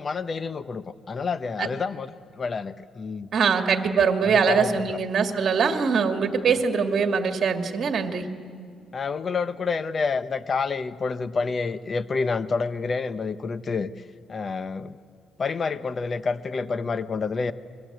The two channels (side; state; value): both; normal; correlation 0.77